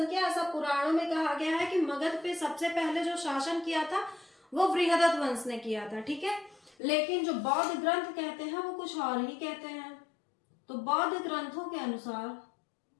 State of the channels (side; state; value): right; drops out; at 6.8 s